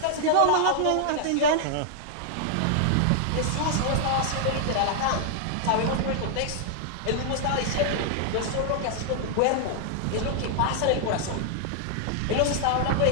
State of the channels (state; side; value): different; both; correlation 0.00